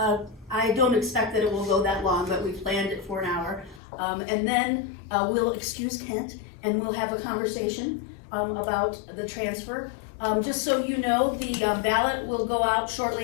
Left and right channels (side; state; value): right; drops out; at 3.8 s